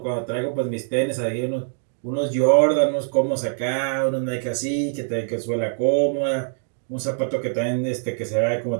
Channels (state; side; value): silent; left; digital silence